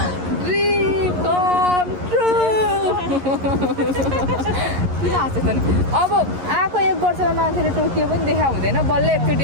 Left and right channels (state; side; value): late; left; 11 ms